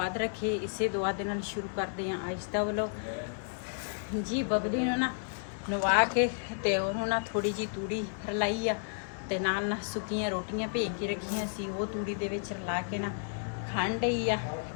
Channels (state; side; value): silent; right; digital silence